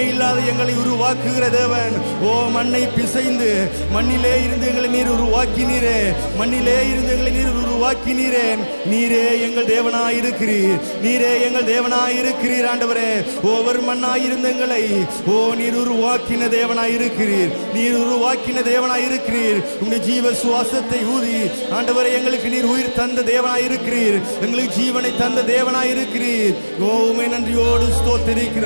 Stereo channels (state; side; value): inverted; both; correlation -1.00